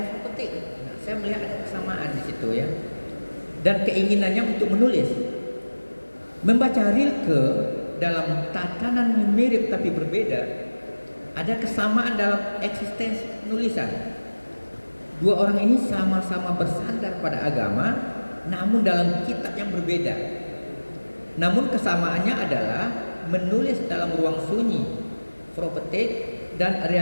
profetik. Nah, saya melihat ada kesamaan di situ ya. Dan keinginannya untuk menulis. Membaca Rilke dalam tatanan mirip tapi berbeda, ada kesamaan dalam eksistensi penulisan. Dua orang ini sama-sama bersandar pada agama, namun dalam kitab yang berbeda. Namun kesamaannya adalah menulis dalam ruang sunyi, profetik dan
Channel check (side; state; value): both; inverted; correlation -1.00